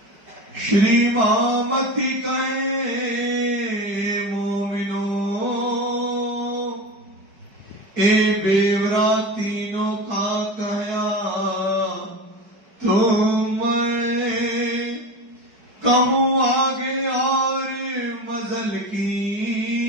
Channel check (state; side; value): late; left; 4.7 ms